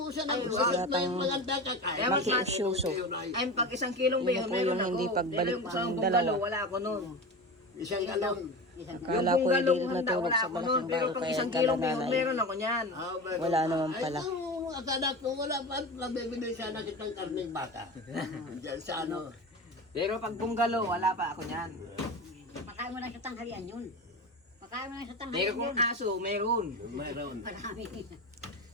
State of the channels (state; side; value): normal; both; correlation 0.27